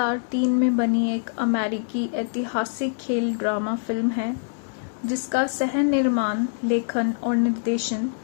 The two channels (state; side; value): silent; right; 62 dB below the other